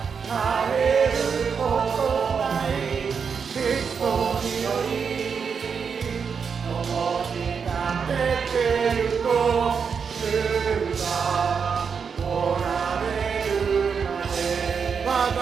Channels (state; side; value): quieter; left; 6.2 dB